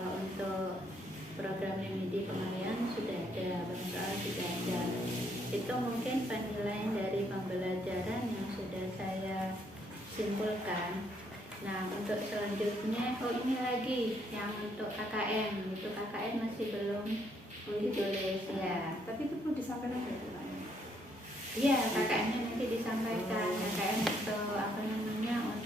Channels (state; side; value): normal; both; correlation 0.71